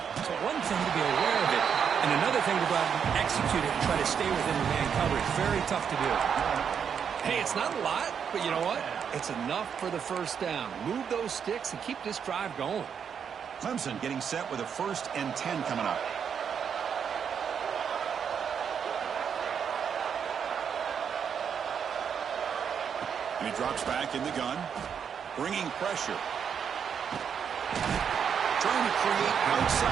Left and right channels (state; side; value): quieter; left; 7.4 dB